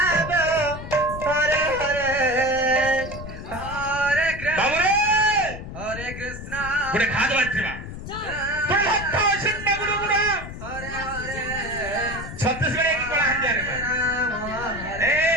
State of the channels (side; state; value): left; noise; rumble, 10 dB below the sound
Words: Hare Hare, Hare Krishna, Hare Krishna. পুরে খাওয়া দাওয়া ছিল তোর ভক্ত আছেন না গুরু গুরু Hare Hare, ছত্তিশগড়ে কি করা হান যারে এই